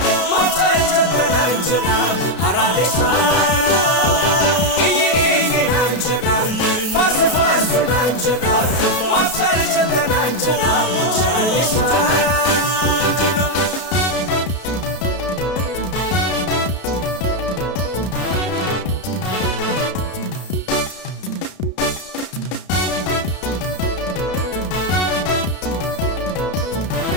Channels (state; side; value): late; right; 32 ms